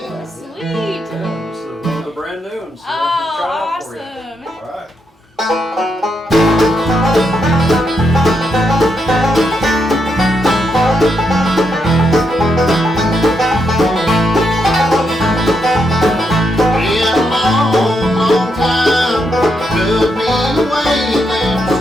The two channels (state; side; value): normal; both; correlation 0.80